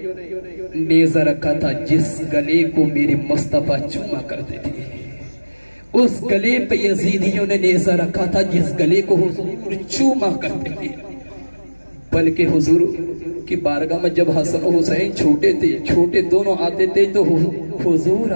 نیزہ رکھا تھا جس گلے کو میرے مصطفیٰ چوما کرتے تھے. اس گلے پہ یزیدیوں نے نیزہ رکھا تھا جس گلے کو حضور چوما کرتے تھے. بلکہ حضور کی بارگاہ میں جب حسن و حسین چھوٹے دونوں آتے تھے تو حضور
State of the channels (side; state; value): both; inverted; correlation -1.00